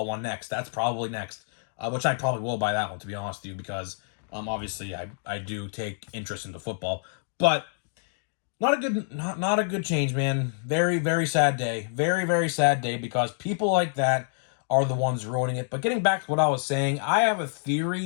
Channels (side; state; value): right; silent; digital silence